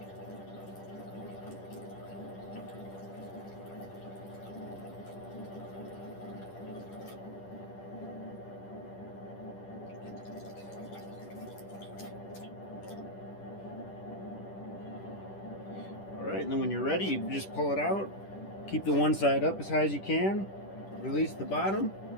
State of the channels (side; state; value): right; late; 10 ms